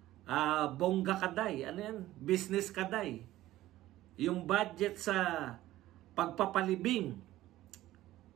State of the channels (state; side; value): quieter; left; 15.3 dB